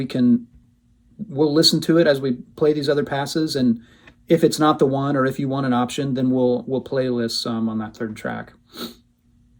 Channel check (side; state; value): both; identical; correlation 1.00